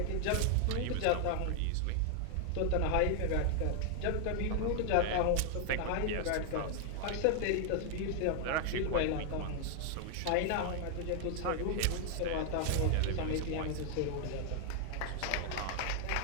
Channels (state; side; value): different; both; correlation 0.00